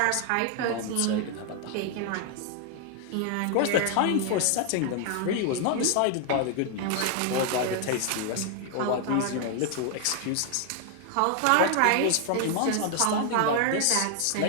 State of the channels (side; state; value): both; different; correlation 0.00